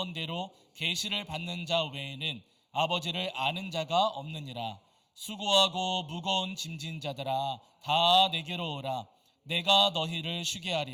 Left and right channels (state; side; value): identical; both; correlation 1.00